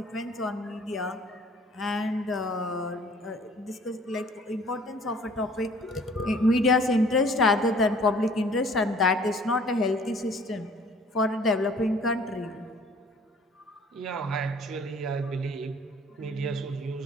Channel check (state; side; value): normal; both; correlation 0.53